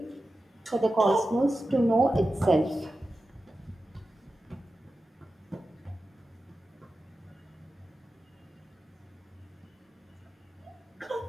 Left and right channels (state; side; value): normal; both; correlation 0.93